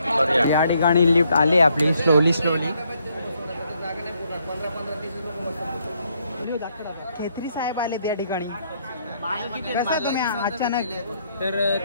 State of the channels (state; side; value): inverted; both; correlation -0.73